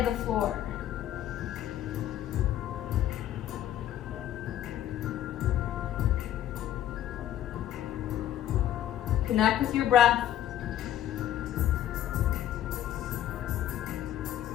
to the floor. Connect with your breath.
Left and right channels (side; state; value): right; quieter; 11.8 dB